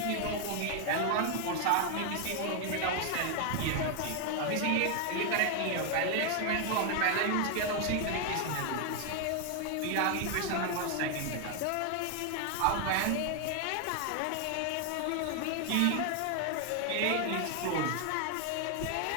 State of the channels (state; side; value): different; both; correlation 0.00